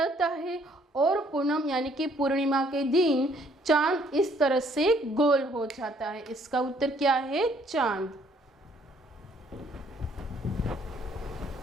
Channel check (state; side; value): normal; both; correlation 0.64